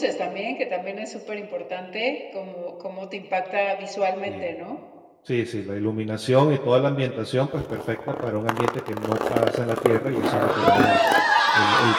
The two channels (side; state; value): both; identical; correlation 1.00